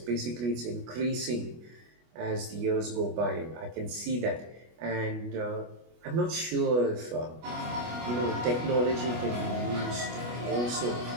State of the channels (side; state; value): left; late; 25 ms